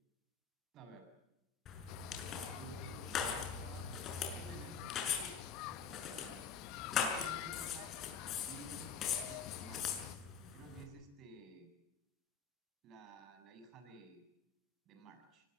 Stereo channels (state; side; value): quieter; right; 6.8 dB